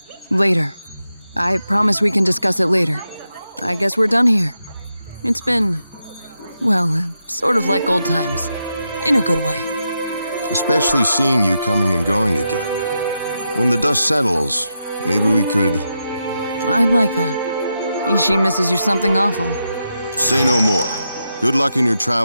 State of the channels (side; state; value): both; inverted; correlation -0.86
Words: later. I promise we can discuss it later. I guess we're done here. It's been, well, sort of like old times. In a good way. Especially seeing you coming and going again. When the dust settles, maybe we could... I'd like that. Ishi misses you something awful. Say no more. Good luck in your